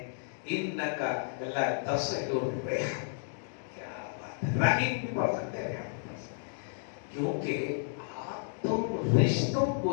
انکا لا تصل الرحم. کیا بات ہے. رحیم بھی پڑھ سکتے ہیں کیونکہ آپ تم رشتوں کو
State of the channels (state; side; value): silent; right; digital silence